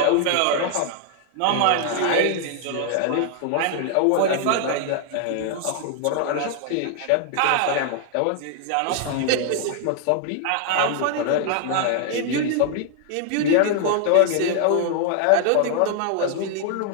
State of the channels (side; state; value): both; different; correlation 0.00